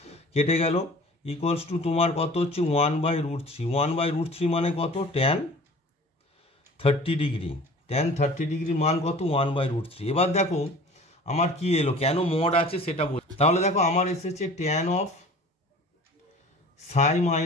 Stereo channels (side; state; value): both; normal; correlation 0.44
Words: কেটে গেল ইকুয়ালস টু তোমার কত হচ্ছে 1/√3, 1/√3 মানে কত ট্যান 30 ডিগ্রি, ট্যান 30 ডিগ্রির মান কত 1/√3। এবার দেখো আমার কি এলো, কেন মড আছে সেটা বল, তাহলে দেখো আমার এসেছে tan of Sai